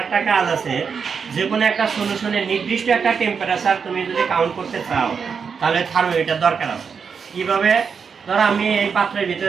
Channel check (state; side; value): quieter; left; 6.1 dB